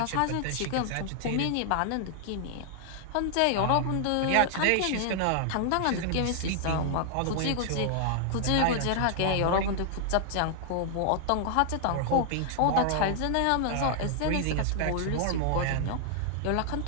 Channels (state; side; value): different; both; correlation 0.00